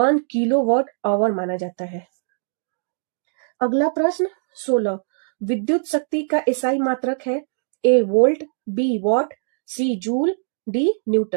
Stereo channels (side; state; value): left; silent; digital silence